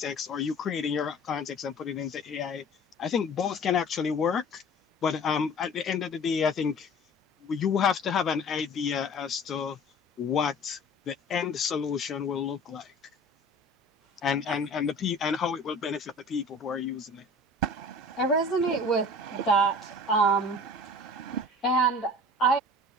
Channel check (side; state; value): both; normal; correlation 0.43